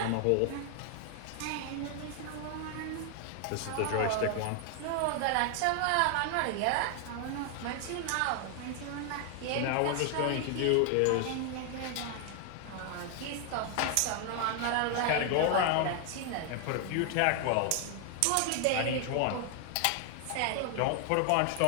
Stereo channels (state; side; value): different; both; correlation 0.00